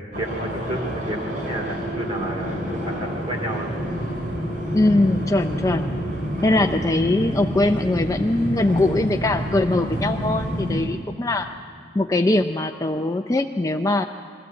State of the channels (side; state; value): both; normal; correlation 0.76